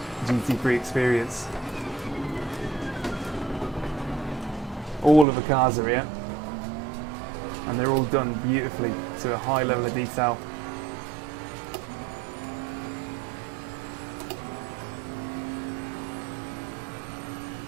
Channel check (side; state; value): left; drops out; at 5.2 s